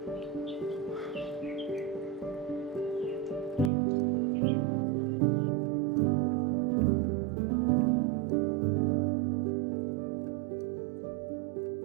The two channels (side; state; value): left; drops out; at 3.7 s